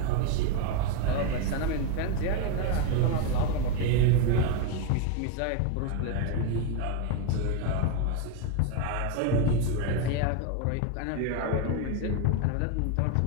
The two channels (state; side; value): different; both; correlation 0.01